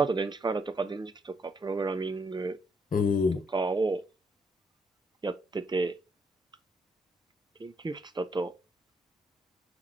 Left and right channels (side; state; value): both; normal; correlation 0.73